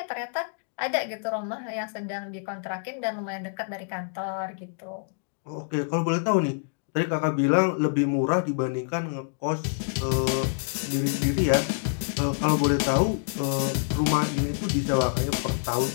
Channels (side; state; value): right; silent; digital silence